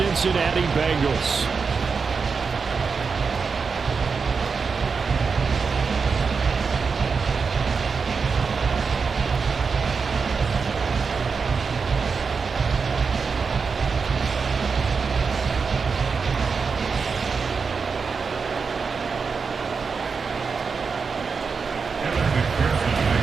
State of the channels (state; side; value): quieter; left; 5.2 dB